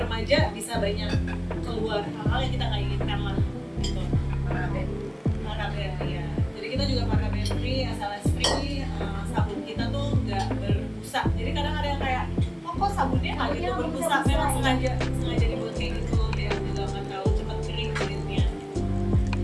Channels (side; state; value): both; identical; correlation 1.00